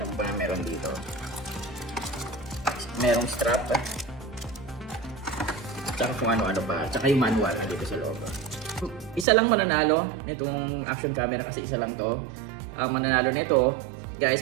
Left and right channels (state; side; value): drops out; left; at 9.2 s